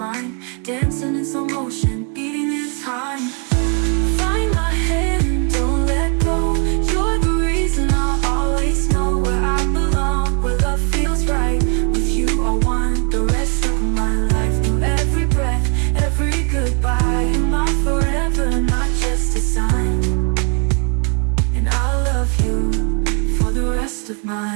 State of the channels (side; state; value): left; quieter; 36.7 dB